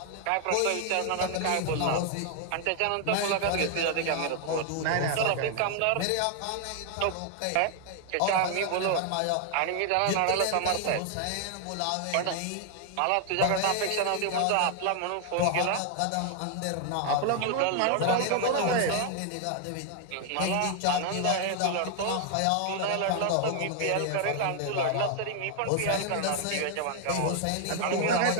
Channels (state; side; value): different; both; correlation 0.00